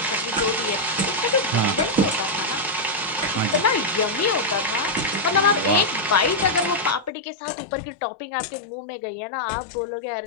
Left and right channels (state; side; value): drops out; right; at 7.1 s